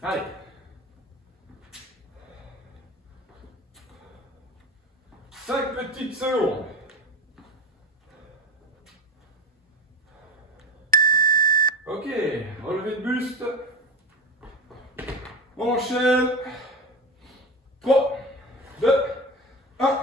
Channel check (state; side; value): normal; both; correlation 0.25